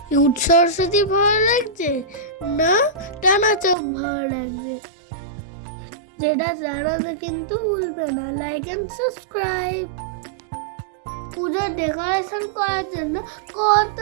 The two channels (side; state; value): left; drops out; at 3.8 s